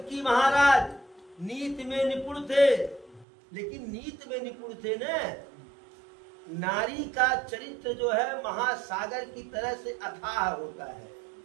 महाराज नीति में निपुण थे, लेकिन नीति में निपुण थे न, नारी का चरित्र जो है महासागर की तरह से अथाह होता है।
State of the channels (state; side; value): drops out; left; at 3.2 s